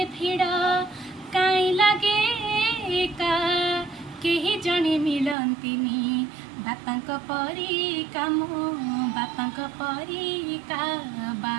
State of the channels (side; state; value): left; drops out; at 5.4 s